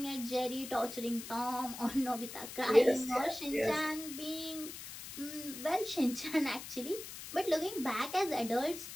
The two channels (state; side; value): noise; left; hiss, 11 dB below the sound